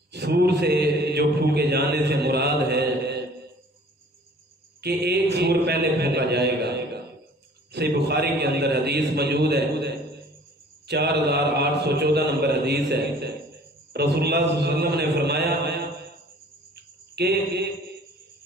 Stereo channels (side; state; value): both; normal; correlation 0.51